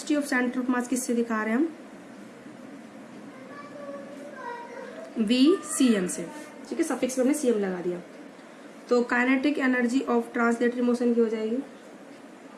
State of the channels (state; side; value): identical; both; correlation 1.00